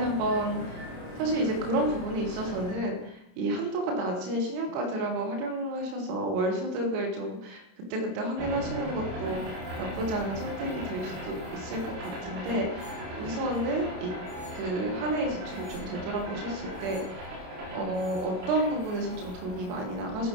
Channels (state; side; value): late; left; 27 ms